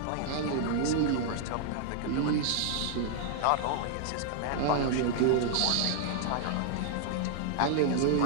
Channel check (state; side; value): different; both; correlation -0.01